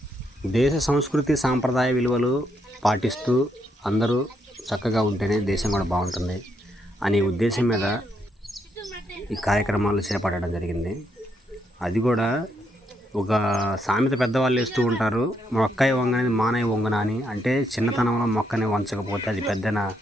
దేశ సంస్కృతి సాంప్రదాయ విలువలు పాటిస్తూ అందరూ చక్కగా ఉంటేనే దేశం కూడా బాగుంటుంది అనే ఉద్దేశం మీద ఈ కార్యక్రమాలు చేపట్టడం జరిగింది. అది కూడా ఒక సామెత పెద్దవాళ్ళు వేస్తూ ఉంటారు, మొక్కై వంగనేది మానై వంగన అని. అంటే చిన్నతనంలో మొక్కని వంచకపోతే అది పెద్దన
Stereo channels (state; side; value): normal; both; correlation 0.77